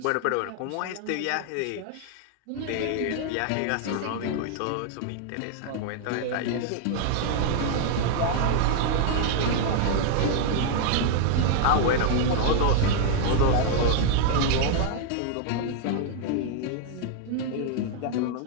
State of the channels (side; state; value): both; different; correlation 0.00